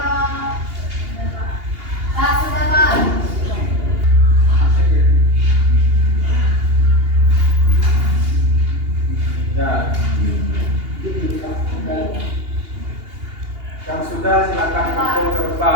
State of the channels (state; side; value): late; left; 2.8 ms